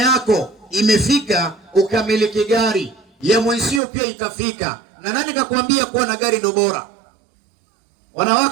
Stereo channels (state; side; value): drops out; left; at 3.8 s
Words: imefika ukamiliki gari. Ya mwenzio pia itafika. Na nani kakwambia kuwa na gari ndo bora?